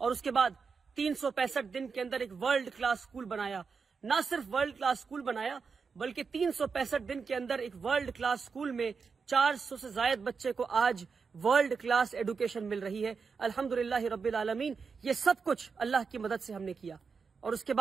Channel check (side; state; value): left; quieter; 5.3 dB